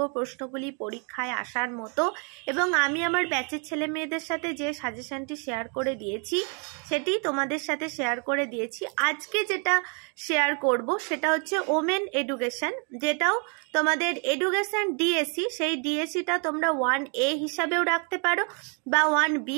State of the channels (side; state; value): left; quieter; 37.7 dB